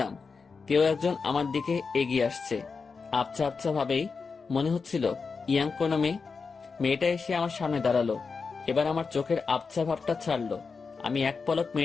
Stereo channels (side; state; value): right; quieter; 4.9 dB